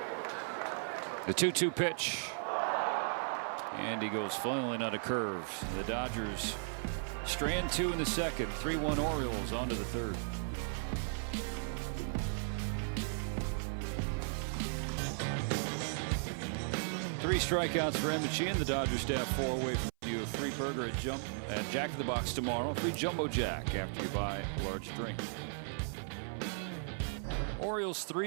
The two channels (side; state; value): left; silent; 54 dB below the other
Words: The 2-2 pitch. And he goes flailing out of curves. The Dodgers strand 2 in the second. 3-1 Orioles on to the third. Three strikeouts for Emmett Sheehan. The Dodgers staff 4 away from you. A free burger at Jack in the Box tomorrow. Free Jumbo Jack after you buy a large drink. Orioles